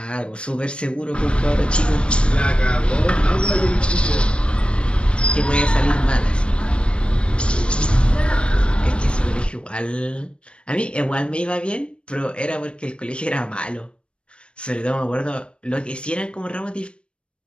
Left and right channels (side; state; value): right; late; 0.057 ms